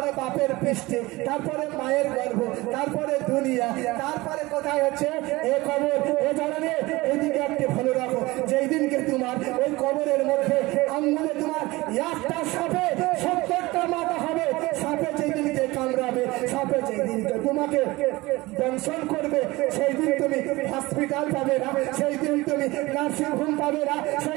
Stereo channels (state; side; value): quieter; left; 20.9 dB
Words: বাপের পৃষ্ঠে, তারপরে মায়ের গর্ভ, তারপরে দুনিয়া, তারপরে কোথায় হচ্ছে এ কবর। এ জানে এদিকে একটি ভালো রাখো, যেই দিনকে তোমার ওই কবরের মধ্যে আঙ্গুলে তোমার একটা সাপে 70টা মাথা হবে। সাপে যেই দিনকে কামড়াবে, সাপে যেই দিনকে তোমাকে দংশন করবে, সেই দিন তুমি হসপিটাল পাবে না, সেই দিন তুমি নার্সিং হোম পাবে না,